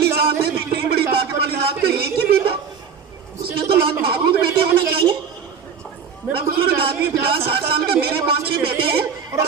ذات ہے تو اتنی بڑی طاقت والی ذات کا ایک ہی بیٹا, اس کے تو لاکھ محبوب بیٹے ہونے چاہیے. میرا بزرگ آدمی 50-60 سال کا, میرے 5-6 بیٹے ہیں اور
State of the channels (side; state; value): left; quieter; 6.6 dB